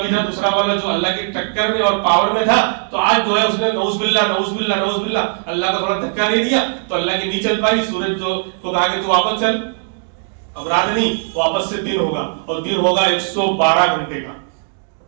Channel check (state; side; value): silent; left; digital silence